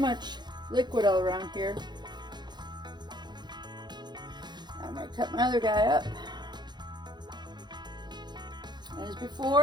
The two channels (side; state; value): left; late; 0.21 ms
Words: liquid all around here. I'm going to cut my other guy up. And as